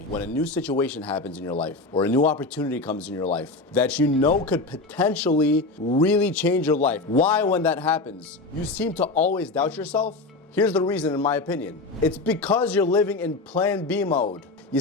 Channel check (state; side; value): quieter; right; 3.3 dB